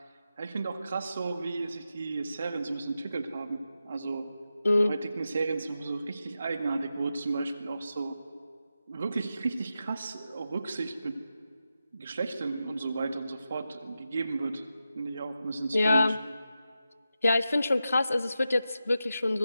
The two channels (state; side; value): inverted; both; correlation -0.90